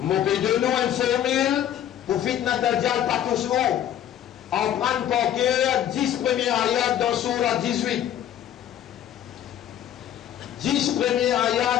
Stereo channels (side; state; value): right; quieter; 10.8 dB